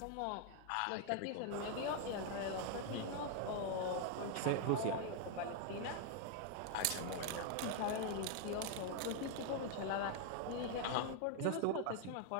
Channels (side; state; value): both; different; correlation 0.00